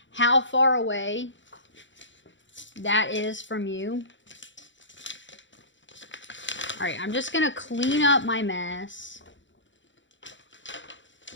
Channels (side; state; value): right; late; 0.54 ms